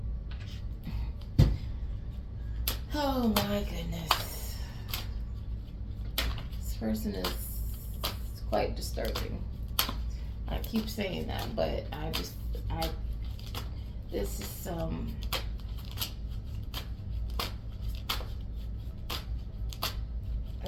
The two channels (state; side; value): identical; both; correlation 1.00